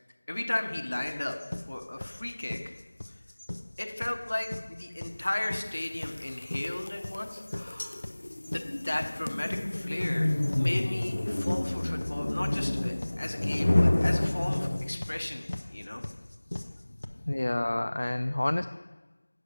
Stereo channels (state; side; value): inverted; both; correlation -1.00